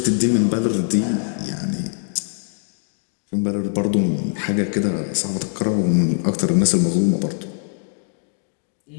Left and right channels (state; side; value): silent; right; digital silence